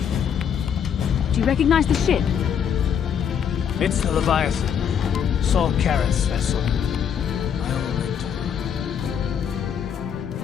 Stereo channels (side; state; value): right; quieter; 8.0 dB